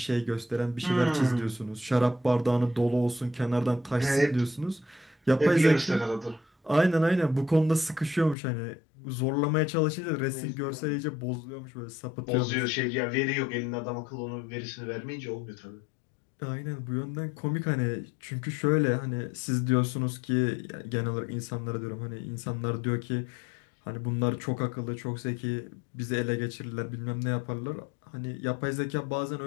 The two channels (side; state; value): right; drops out; at 8.3 s